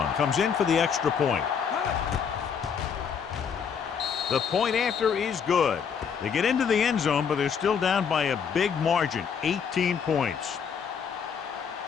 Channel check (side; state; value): right; quieter; 6.9 dB